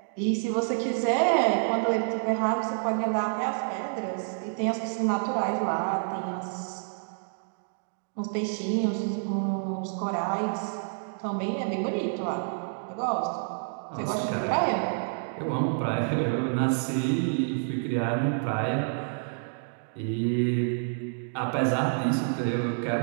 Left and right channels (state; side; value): silent; left; digital silence